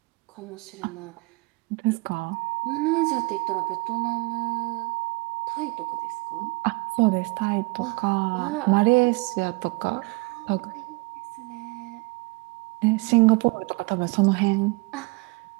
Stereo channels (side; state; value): left; quieter; 26.2 dB